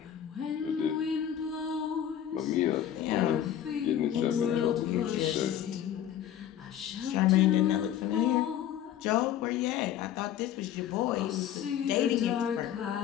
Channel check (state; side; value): quieter; right; 10.6 dB